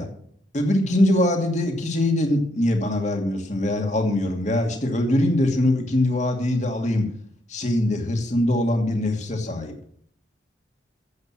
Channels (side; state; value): both; normal; correlation 0.75